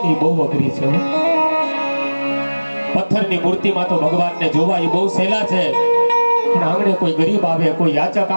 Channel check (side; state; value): both; inverted; correlation -1.00